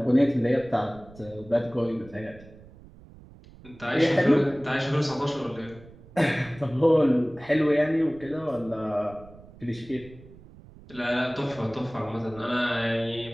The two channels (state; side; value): noise; right; rumble, 21 dB below the sound